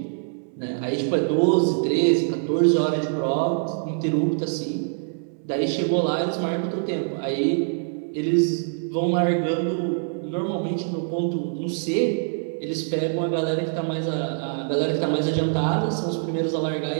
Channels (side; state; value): left; silent; 62 dB below the other